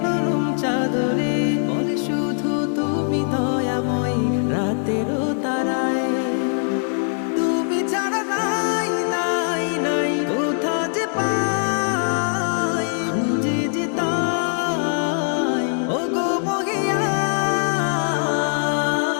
নরম চাদরে, বলে শুধু তুমি দয়াময় রাতেরও তারায়। তুমি ছাড়া নাই নাই নাই কোথা যে পাই, খুঁজে যে তাই ও গো মহিয়া।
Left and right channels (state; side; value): silent; right; digital silence